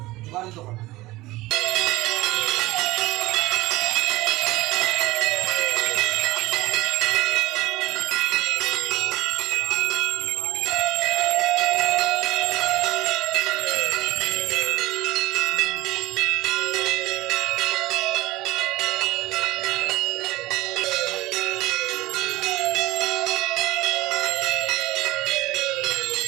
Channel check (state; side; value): quieter; left; 18.8 dB